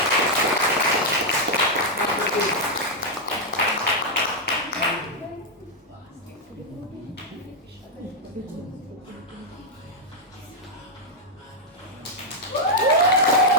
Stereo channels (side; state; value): both; normal; correlation -0.02